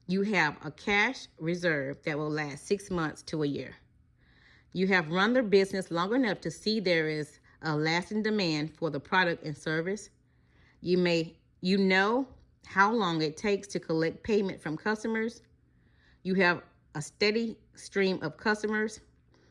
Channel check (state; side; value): identical; both; correlation 1.00